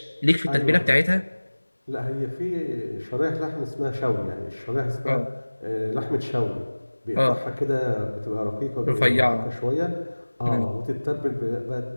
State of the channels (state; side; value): inverted; both; correlation -1.00